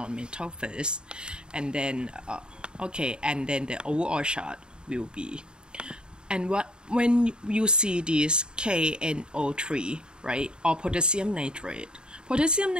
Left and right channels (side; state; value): left; late; 0.049 ms